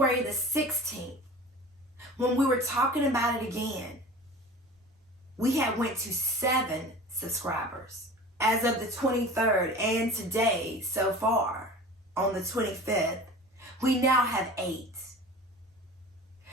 the 16th, when we were talking about it again, we had went to 7 subscribers. As of the 23rd and today, so far, on the 25th, we now have 8.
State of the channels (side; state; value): both; normal; correlation 0.39